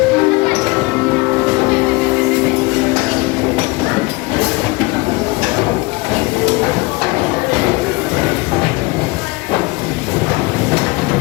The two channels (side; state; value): right; quieter; 24.9 dB